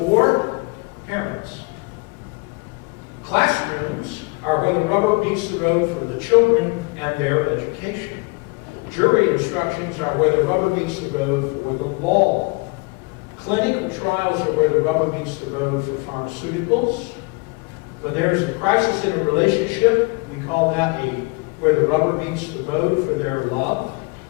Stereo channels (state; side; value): quieter; right; 28.1 dB